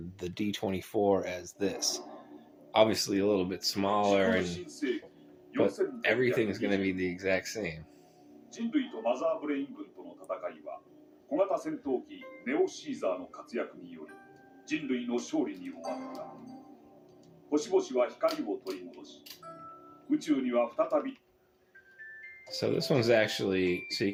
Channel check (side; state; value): both; identical; correlation 1.00